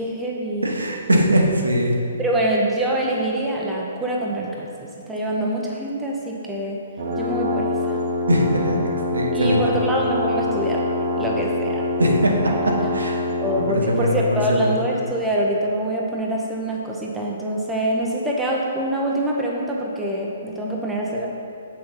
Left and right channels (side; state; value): both; inverted; correlation -0.49